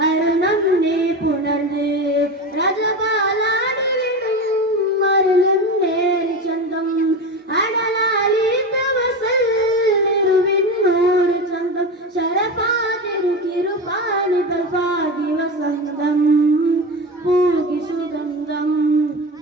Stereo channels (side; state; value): both; normal; correlation 0.24